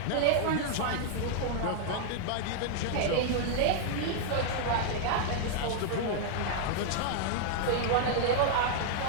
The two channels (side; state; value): both; different; correlation -0.01